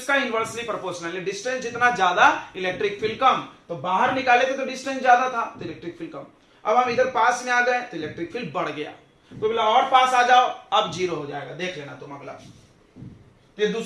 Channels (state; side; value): identical; both; correlation 1.00